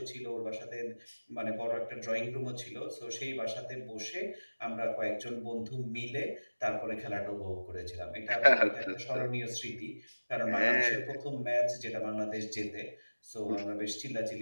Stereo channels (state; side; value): inverted; both; correlation -1.00